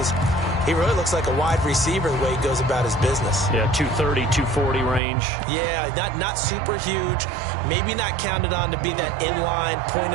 he really looks like a wide receiver the way he goes about his business. Yeah, 230, 240 range. Yeah, not super huge. Maybe not counted on to be that inline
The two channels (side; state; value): left; drops out; at 5.0 s